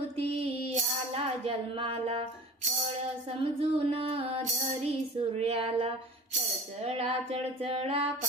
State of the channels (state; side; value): normal; both; correlation 0.39